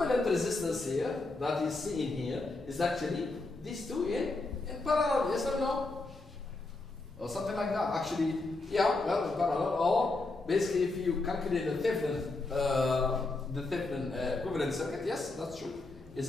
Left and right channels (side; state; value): right; quieter; 3.2 dB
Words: resistance here, that is seen here, is actually these two in parallel, yes or no? Or something like that. Actually, yeah, well, in parallel. Or basically, if you calculate the Thevenin equivalent circuit, yes, that's true. It's